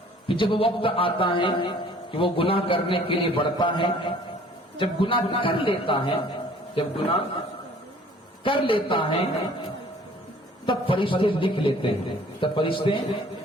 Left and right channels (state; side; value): normal; both; correlation 0.54